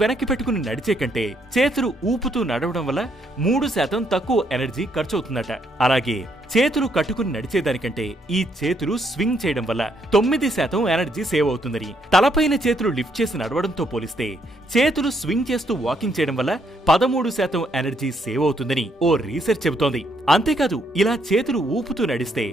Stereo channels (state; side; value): normal; both; correlation 0.73